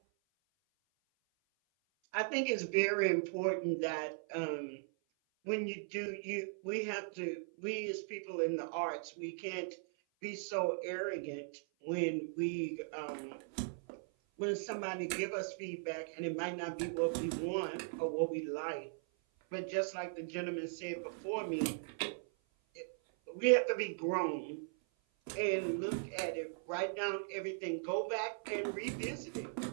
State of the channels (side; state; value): left; silent; 52 dB below the other